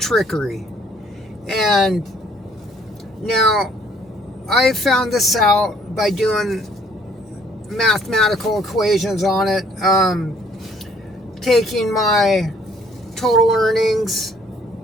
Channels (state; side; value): normal; both; correlation 0.61